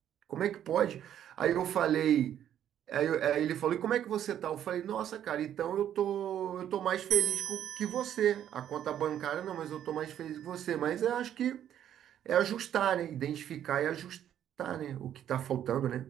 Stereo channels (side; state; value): left; quieter; 10.4 dB